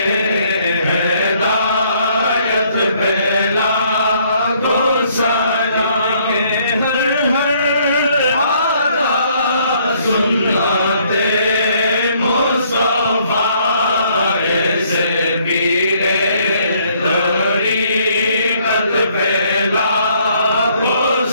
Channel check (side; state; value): both; inverted; correlation -0.65